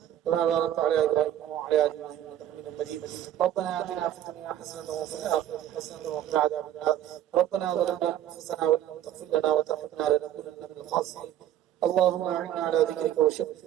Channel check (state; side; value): quieter; left; 11.7 dB